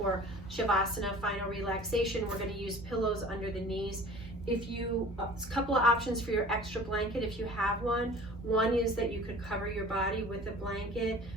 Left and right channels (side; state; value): both; normal; correlation 0.44